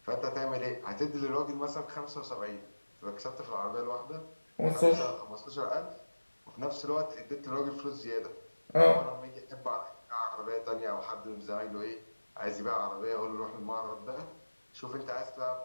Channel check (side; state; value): both; inverted; correlation -1.00